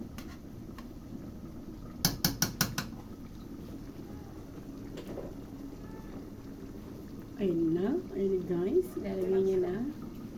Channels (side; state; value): both; identical; correlation 1.00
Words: Ayun na guys, ilalagay niya na